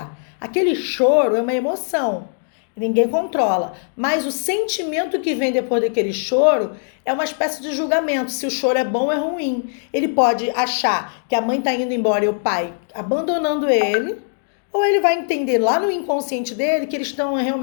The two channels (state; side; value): silent; right; digital silence